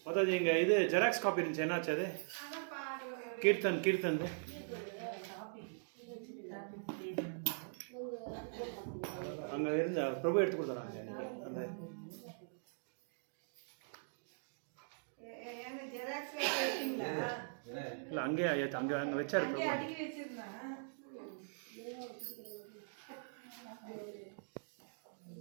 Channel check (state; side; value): silent; left; digital silence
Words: ಮಾತಾಜಿ ಹಿಂಗೆ ಇದು ಜೆರಾಕ್ಸ್ ಕಾಪಿ இருந்துச்சு, என்னாச்சு அது? கீர்த்தன் அங்கே இருந்த பிரபு எடுத்து கொடுத்துறாங்க அந்த இல்லை அங்கேயே அங்கே வச்சாரு பிரபு.